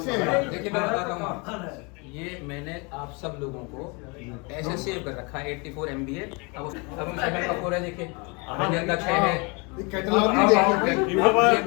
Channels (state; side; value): quieter; right; 30.2 dB